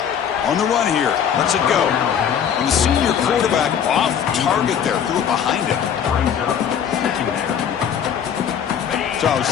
On the run here. Lets it go. And the senior quarterback off target there. Threw it behind him. So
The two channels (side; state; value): right; quieter; 8.4 dB